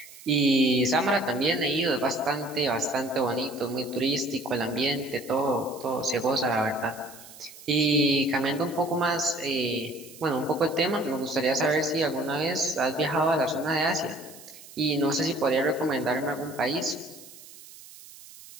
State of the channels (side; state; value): right; noise; hiss, 19 dB below the sound